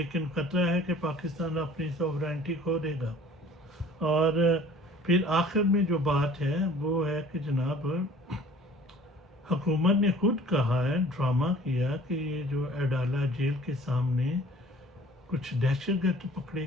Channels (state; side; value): normal; both; correlation 0.49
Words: خطرہ ہے کہ پاکستان اپنی سوورینٹی کھو دے گا۔ اور پھر آخر میں جو بات ہے وہ ہے کہ جناب حکومت نے خود کہا ہے، ڈرامہ کیا کہ یہ جو اڈالہ جیل کے سامنے کچھ دہشت گرد پکڑے